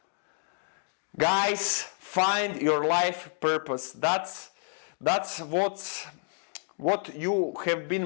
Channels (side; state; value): right; silent; 58 dB below the other